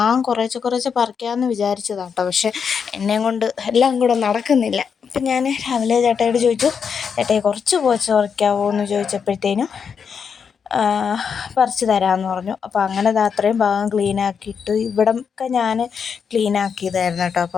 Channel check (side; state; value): right; quieter; 6.6 dB